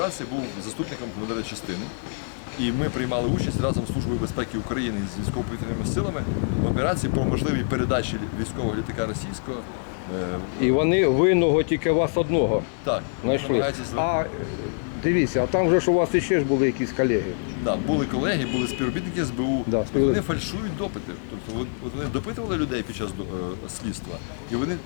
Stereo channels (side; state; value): right; silent; 62 dB below the other